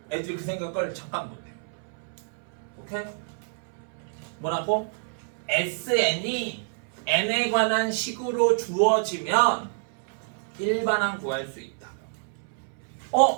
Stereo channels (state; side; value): silent; left; 59 dB below the other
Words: 애들이 그 생각을 잠깐 못해. 오케이? 뭐라고? SN이 n에 관한 식으로 주어지면 일반항 구할 수 있다.